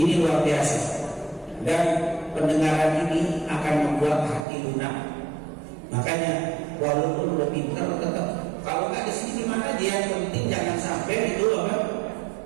luar biasa, dan pendengaran ini akan membuat hati lunak. Makanya walaupun udah pintar, tetap kalau nggak di sini gimana dia, yang penting jangan sampai itu apa?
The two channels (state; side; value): drops out; left; at 4.5 s